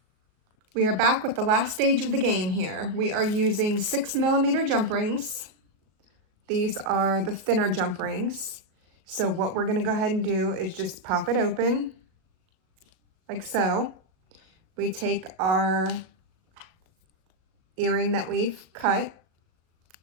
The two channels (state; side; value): late; left; 38 ms